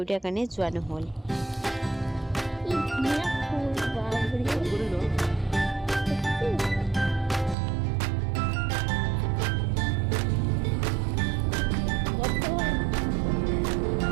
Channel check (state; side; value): drops out; left; at 7.6 s